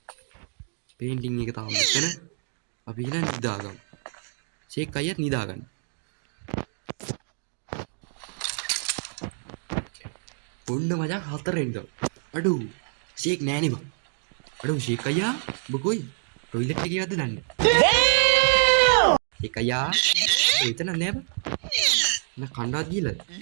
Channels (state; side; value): silent; left; 60 dB below the other